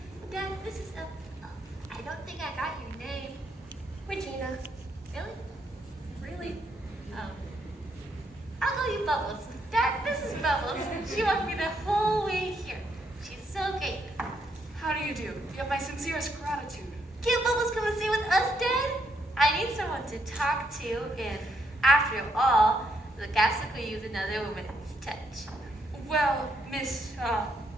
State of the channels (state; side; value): normal; both; correlation 0.75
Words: Dad, this is I don't think I got your name. Regina. Really? Really? I'll call you Bubbles. Dad, this is Bubbles. She walked me the whole way here. She's so great. How do you do? You have my sincerest gratitude. Can't Bubbles come and stay with us, Dad? I need someone to talk to, and after all, the castle could use another woman's touch. Well, Miss,